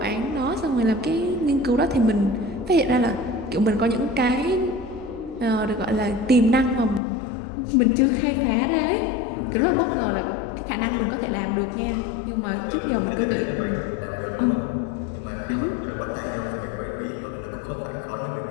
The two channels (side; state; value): right; drops out; at 7.0 s